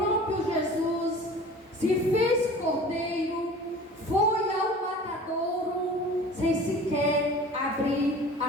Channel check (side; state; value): both; normal; correlation 0.42